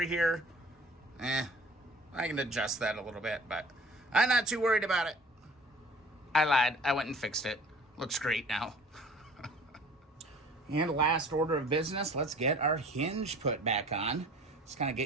here. I can adjust that a little bit, but I'm not too worried about it. I lied. I went and fixed it. Looks great now. And last order of business, let's get our hinge put back on. Just kind of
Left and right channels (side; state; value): both; normal; correlation 0.48